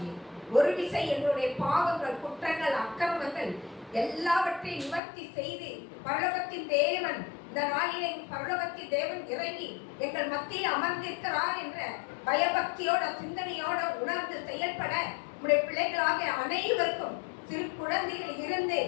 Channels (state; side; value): drops out; right; at 5.0 s